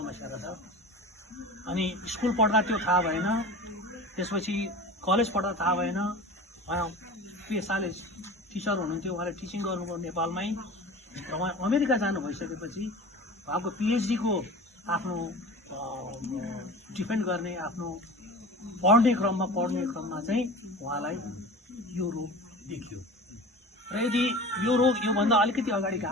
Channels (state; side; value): normal; both; correlation 0.36